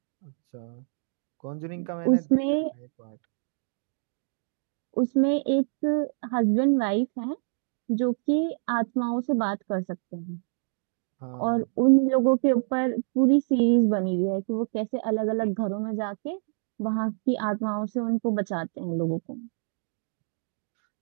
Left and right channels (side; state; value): left; silent; digital silence